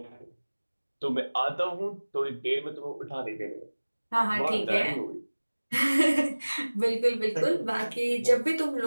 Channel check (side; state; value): both; inverted; correlation -1.00